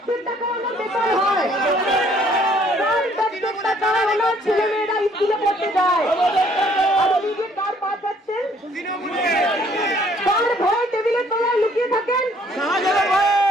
টাকা ওনার বেকার হয়, ওনার ছেলে মেয়েরা স্কুলে পড়তে যায়। আর ওদিকে কার পা যাচ্ছেন, কার ভয়ে টেবিলের তলায় লুকিয়ে থাকেন,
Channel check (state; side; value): normal; both; correlation 0.62